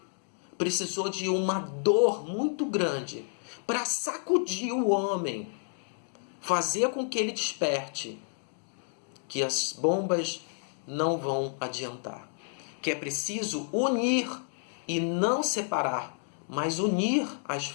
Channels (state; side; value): silent; right; 58 dB below the other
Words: precisou de uma dor muito grande para sacudir o homem, fazer com que ele desperte que as bombas não vão adiantar, que é preciso unir e não separar, mas unir as